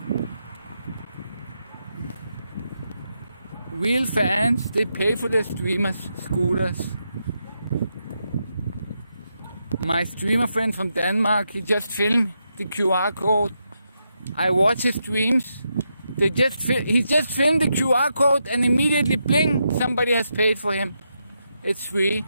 Real fans, they pay for their streamers' scooters. My streamer friend from Denmark, he just filmed the QR code. I watch his streams. He just filmed the QR code and immediately bling, somebody has paid for him. It's free.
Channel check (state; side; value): inverted; both; correlation -0.83